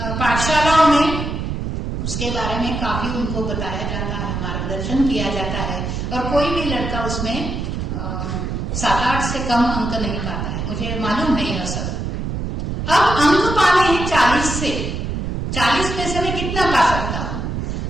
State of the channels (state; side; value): noise; right; rumble, 3 dB below the sound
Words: पाठशालाओं में उसके बारे में काफी उनको बताया जाता है, मार्गदर्शन किया जाता है, और कोई भी लड़का उसमें 7-8 से कम अंक नहीं पाता है, मुझे मालूम है यह सब। अब अंक पाने हैं 40 से, 40 में से मैं कितना पा सकता हूं?